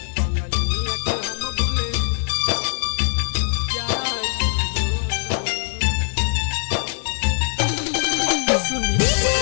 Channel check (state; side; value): silent; right; digital silence